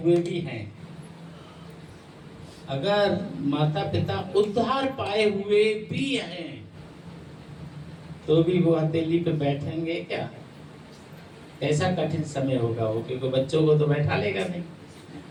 भी हैं, अगर माता पिता उद्धार पाए हुए भी हैं तो भी वो हथेली पे बैठेंगे क्या? ऐसा कठिन समय होगा वो, क्योंकि बच्चों को तो बैठा लेगा नहीं,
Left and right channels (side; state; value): both; identical; correlation 1.00